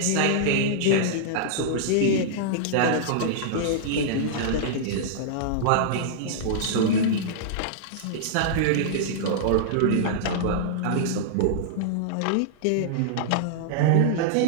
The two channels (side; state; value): both; different; correlation -0.02